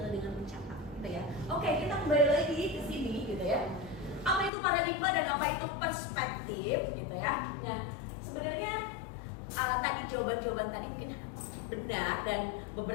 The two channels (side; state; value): right; drops out; at 4.5 s